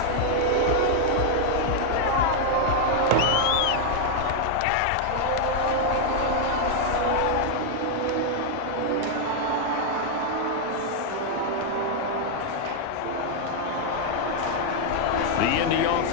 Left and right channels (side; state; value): both; different; correlation 0.00